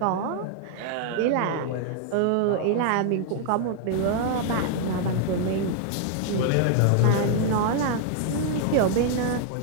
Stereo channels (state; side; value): different; both; correlation 0.00